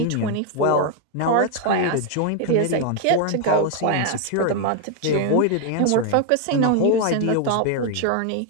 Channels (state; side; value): different; both; correlation 0.01